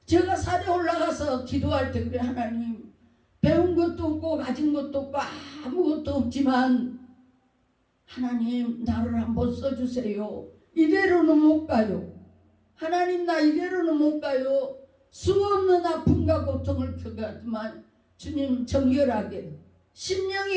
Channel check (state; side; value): identical; both; correlation 1.00